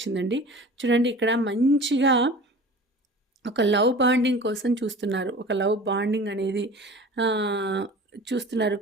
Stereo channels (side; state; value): both; normal; correlation 0.40